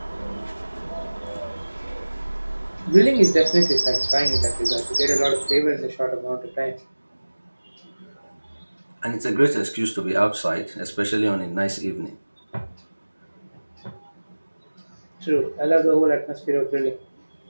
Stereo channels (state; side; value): inverted; both; correlation -1.00